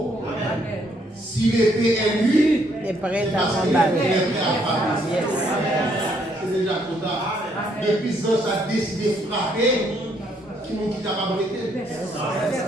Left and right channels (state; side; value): normal; both; correlation 0.70